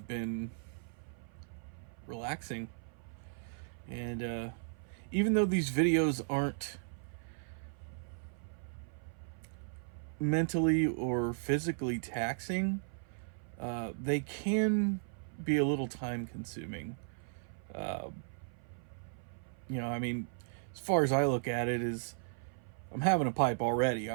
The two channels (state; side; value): silent; left; 54 dB below the other